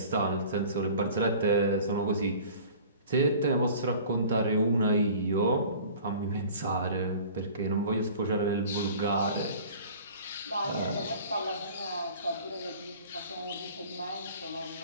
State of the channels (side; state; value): both; inverted; correlation -0.45